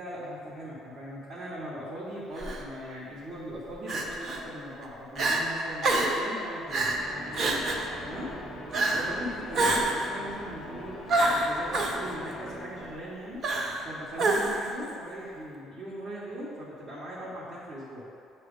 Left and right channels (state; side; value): normal; both; correlation 0.66